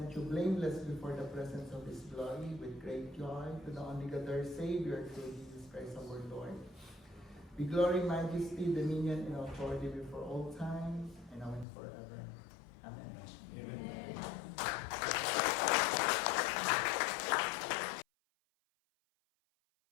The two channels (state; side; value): drops out; right; at 11.7 s